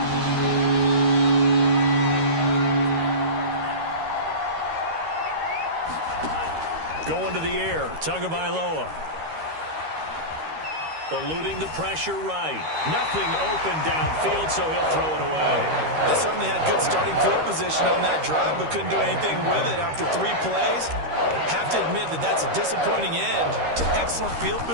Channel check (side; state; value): left; late; 13 ms